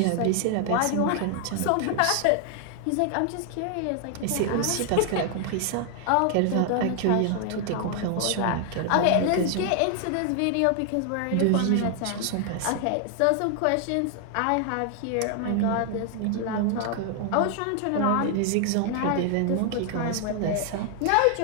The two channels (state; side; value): different; both; correlation 0.00